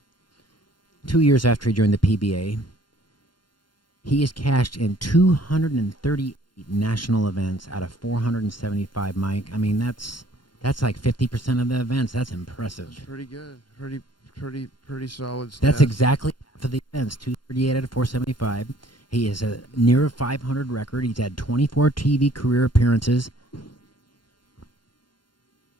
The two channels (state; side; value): late; right; 0.72 ms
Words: 2 years after he joined the PBA, he has cashed in 238 national events out of 475, Mike. I mean, that's like 50% of the events. That's impressive. That's pretty good. Pretty solid stats. That's exactly half of the events, 238 out of 475. He has a near 500 record. He's had 24 TV career appearances.